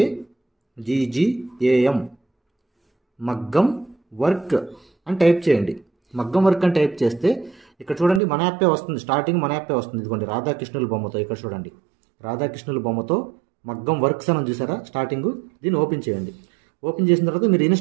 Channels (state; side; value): drops out; left; at 8.2 s